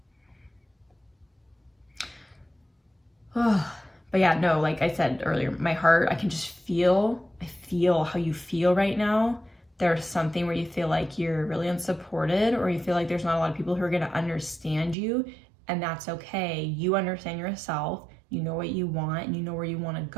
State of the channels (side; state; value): left; drops out; at 15.0 s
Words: But yeah, no, like I said earlier, my heart, I feel how you feel right now. There's something where you feel like you're really unsupported, or you feel like there's not a lot of people who are going to understand you, and that's okay. You understand yourself, you know what you want, and you know where you want to